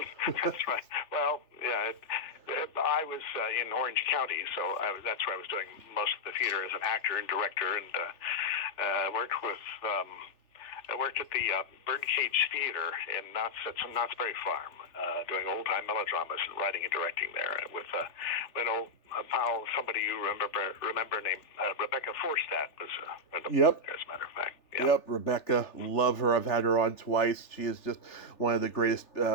that's right. Well, yeah, I was in Orange County, so that's where I was doing most of the theater as an actor and director, and I worked at the Birdcage Theater in Knott's Berry Farm, doing old-time melodramas and writing and directing there with an old pal, somebody you remember named Rebecca Forstadt was yep. there, as a matter of fact. Yeah. Yep, Rebecca, love her. I've had her on twice. She is just one of the greatest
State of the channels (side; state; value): right; late; 3.4 ms